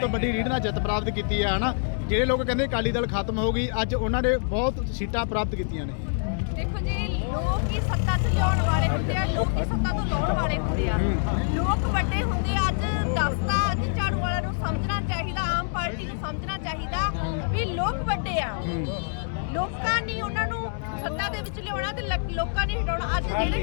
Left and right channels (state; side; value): silent; right; digital silence